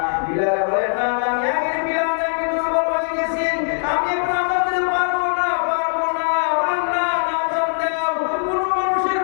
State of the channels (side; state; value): right; silent; digital silence